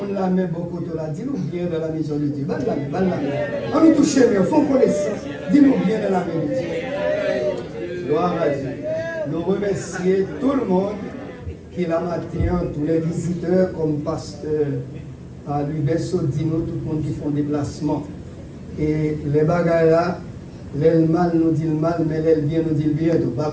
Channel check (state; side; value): identical; both; correlation 1.00